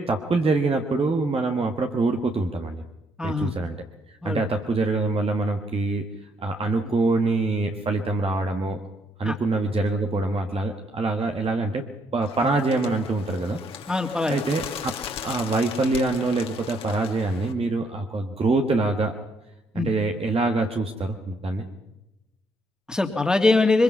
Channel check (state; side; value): normal; both; correlation 0.72